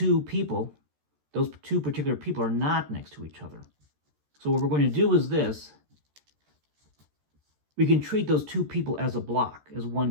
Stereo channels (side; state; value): left; late; 13 ms